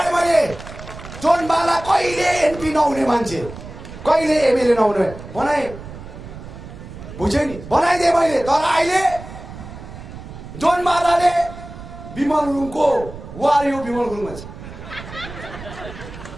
मैले। जोनबाला कहिले एमपी नहुने मान्छे, कहिले एमएलए नहुने बनाएँ, बुझेँ नि, बनाइदिएँ मैले। तर अहिले जोनबालाले विमल गुरुङको वार यो विमल गुरुङ मान्छे,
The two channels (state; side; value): noise; right; rumble, 13 dB below the sound